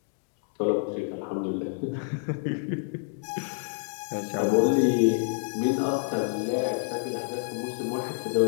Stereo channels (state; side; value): silent; right; digital silence